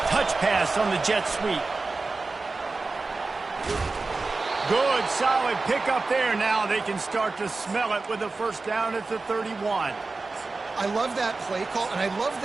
touch pass on the jet sweep. Good, solid pickup there. Now they can start to smell it with a 1st down at the 31. I love that play call, and I love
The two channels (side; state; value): left; quieter; 3.7 dB